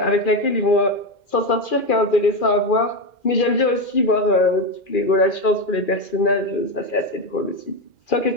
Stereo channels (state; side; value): late; right; 2.4 ms